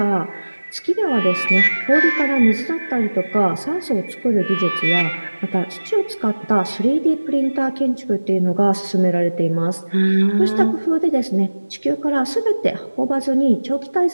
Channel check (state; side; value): inverted; both; correlation -1.00